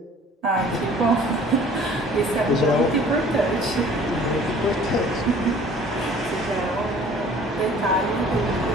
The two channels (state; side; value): normal; both; correlation 0.50